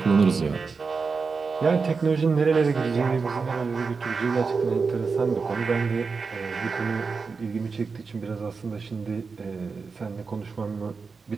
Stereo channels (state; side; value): quieter; left; 4.8 dB